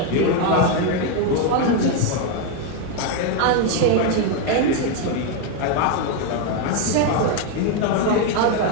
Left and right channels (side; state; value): both; different; correlation 0.01